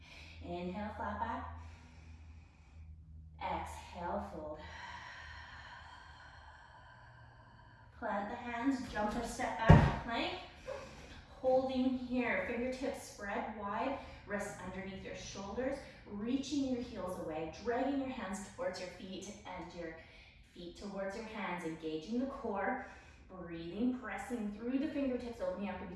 Inhale, flat back. Exhale, fold. Plant the hands, jump or step back, plank. Holding here, fingertips spread wide, wrists underneath your shoulders, reaching your heels away, dragging your hands towards your feet and your feet towards your hands, engaging the core, breathing, pressing through the fingertips, opening up in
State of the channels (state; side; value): identical; both; correlation 1.00